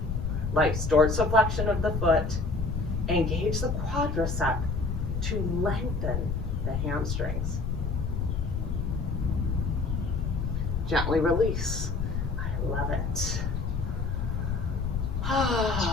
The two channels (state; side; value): noise; left; rumble, 2 dB below the sound